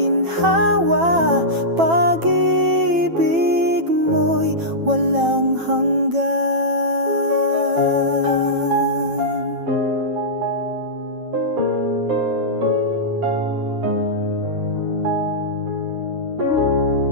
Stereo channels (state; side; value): late; left; 9.0 ms